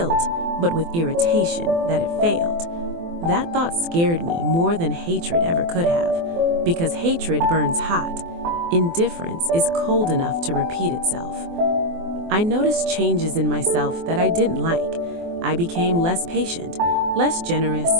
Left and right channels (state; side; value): late; left; 24 ms